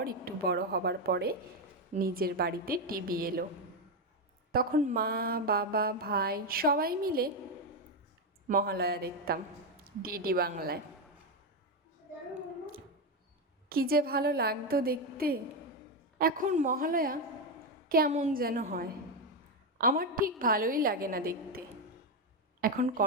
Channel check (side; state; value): both; normal; correlation 0.08